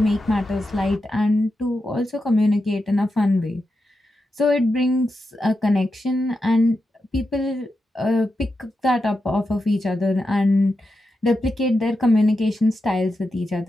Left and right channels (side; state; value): both; normal; correlation 0.88